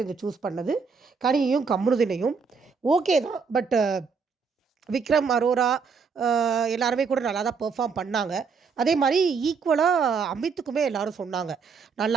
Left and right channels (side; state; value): left; quieter; 5.4 dB